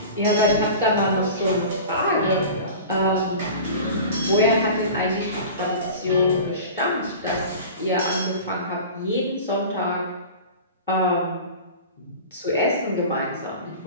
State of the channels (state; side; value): inverted; both; correlation -0.36